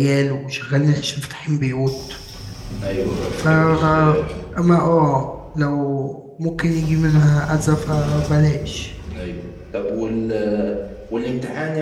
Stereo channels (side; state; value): both; identical; correlation 1.00